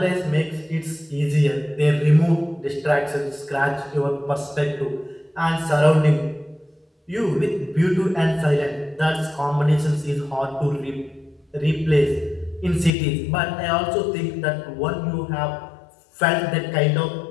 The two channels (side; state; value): right; drops out; at 12.9 s